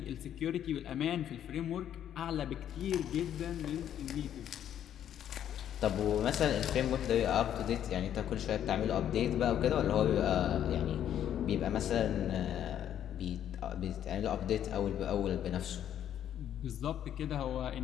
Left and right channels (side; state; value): right; quieter; 10.3 dB